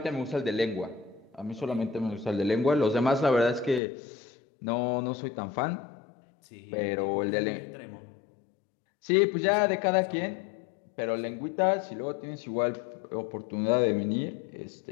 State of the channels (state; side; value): drops out; right; at 3.8 s